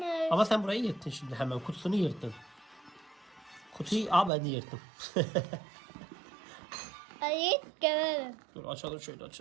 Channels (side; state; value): left; drops out; at 4.3 s